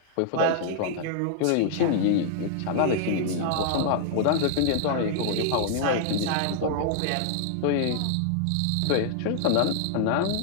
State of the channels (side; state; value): both; different; correlation -0.01